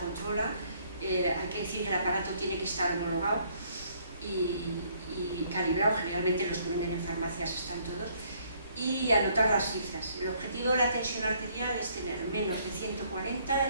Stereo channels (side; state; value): both; inverted; correlation -0.65